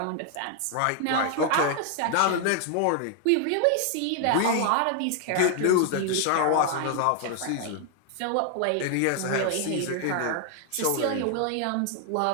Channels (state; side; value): different; both; correlation 0.00